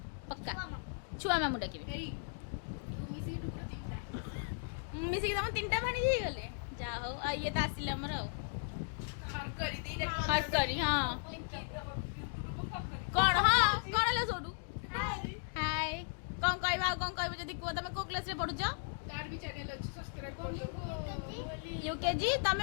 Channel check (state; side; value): silent; right; digital silence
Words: पक्का छुआ मामू डाकिबि मिसी के तम तीनटा भाणी जे गले जा हो आ ये त आसिले हमर हट करी हां कौन हाँ कौन है सोडू हाय कौन कहबा कौन कहबो जदी को तमे को क्लास रे पढु छ तार भी चैनल अछि सब्सक्राइब कर दो यूकेजी